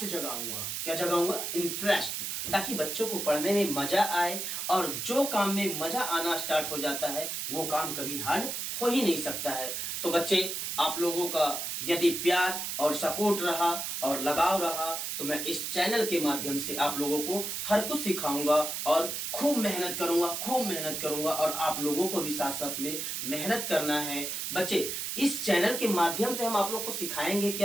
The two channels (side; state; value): right; noise; hiss, 3 dB below the sound